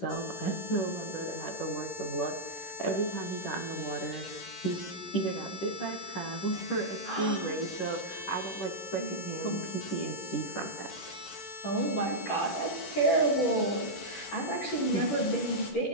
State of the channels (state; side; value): late; right; 11 ms